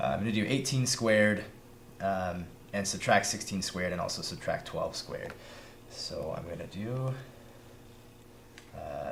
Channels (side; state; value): both; identical; correlation 1.00